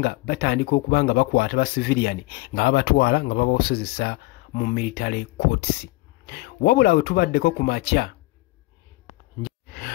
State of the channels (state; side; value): quieter; right; 20.9 dB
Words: batandika okuba nga bakwata ba civilian nga babatwala nga babasozesa mu military courts. Wabula we tubaddeko ku makya